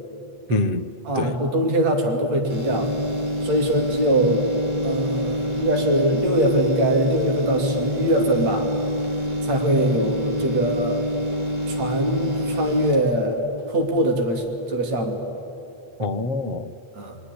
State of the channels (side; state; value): left; late; 8.2 ms